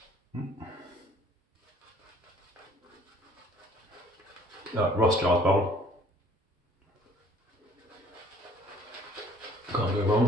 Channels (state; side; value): normal; both; correlation 0.56